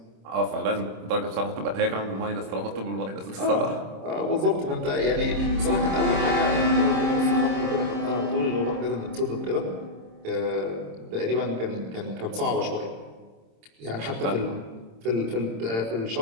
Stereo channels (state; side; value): late; left; 26 ms